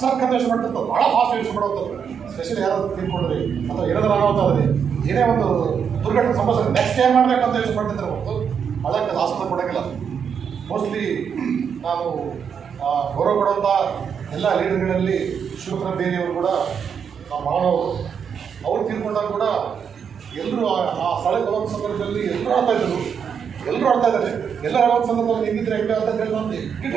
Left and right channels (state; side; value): quieter; left; 7.2 dB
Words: ಸರ್ಕಾರ ಯೋಚನೆ ಮಾಡ್ತಿರ್ತದೆ. ಭಾಳ ಫಾಸ್ಟ್ ಯೋಚನೆ ಮಾಡುವಂಥದ್ದು. ಸ್ಪೆಷಲಿ ಯಾರಾದ್ರು ತಿಳ್ಕೊಂಡ್ರಿ ಅಥವಾ ಏನಾದರೂ ಅನಾಹುತ ಏನೇ ಒಂದು ದುರ್ಘಟನೆ ಸಂಭವಿಸಿದ್ರೆ ನೆಕ್ಸ್ಟ್ ಏನ್ ಮಾಡಬೇಕಂತ ಯೋಚನೆ ಮಾಡ್ತಿದ್ರೆ ಹೊರತು ಅದಕ್ಕೆ ಆಸ್ಪತ್ರೆ ಕೊಡೋಂಗಿಲ್ಲ. ಮೋಸ್ಟ್ಲಿ ನಾನು ಗೌರವ ಕೊಡುವಂಥ ಎಲ್ಲ ಲೀಡರ್ಗಳಲ್ಲಿ ಶಿವಕುಮಾರ ಬೇರೆಯವರು ಕೂಡ ನಮ್ಮ ಮಾನವರು ಅವ್ರು ತೀರ್ಕೊಂಡಾಗ ಕೂಡ ಎಲ್ಲರೂ ಆ ಸ್ಥಳಕ್ಕೆ ಹೋಗೋ ಸಂದರ್ಭದಲ್ಲಿ ಎಲ್ಲರೂ ಆಡ್ತಾ ಇದ್ದಾರೆ. ಎಲ್ಲರೂ ಆಡೋ ಸಂದರ್ಭದಲ್ಲಿ ಹೆಂಗಿದ್ರೆ ಹೆಂಗೆ ಅಂತ ಹೇಳಿ ನಾನು